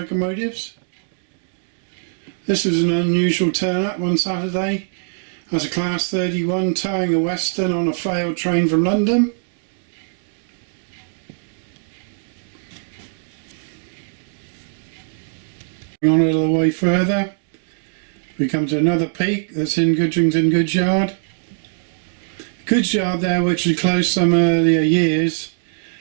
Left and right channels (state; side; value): silent; left; 65 dB below the other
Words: This was an unusual turn up one Saturday as a Class 31 towing a Western on a failed train from London. On a little way further, we come to another peak that's in Goodrington Goods Yard. Goods Yard there, which was closed some earlier years,